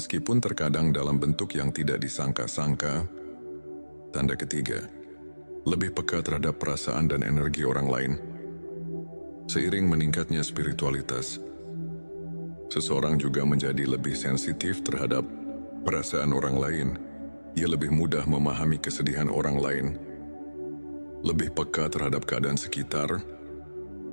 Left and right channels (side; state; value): both; inverted; correlation -1.00